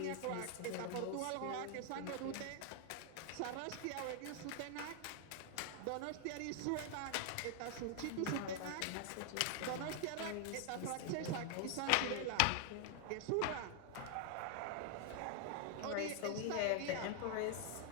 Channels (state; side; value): different; both; correlation 0.00